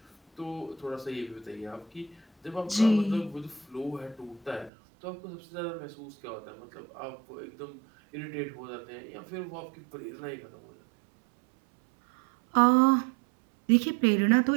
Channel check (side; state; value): left; drops out; at 4.7 s